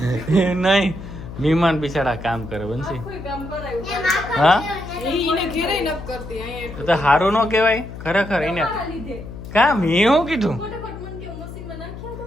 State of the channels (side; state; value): left; noise; hum, 11 dB below the sound